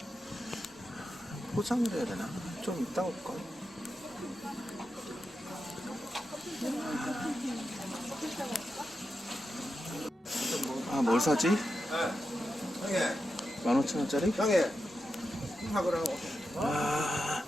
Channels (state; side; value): normal; both; correlation 0.89